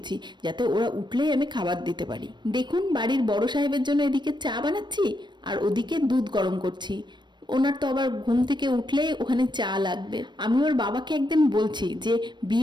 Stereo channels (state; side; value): late; left; 0.22 ms